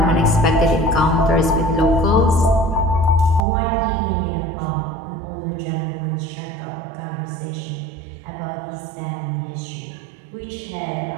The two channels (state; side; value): drops out; left; at 3.4 s